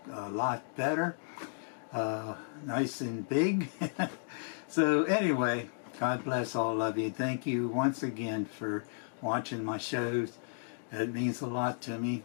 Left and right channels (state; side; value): silent; right; digital silence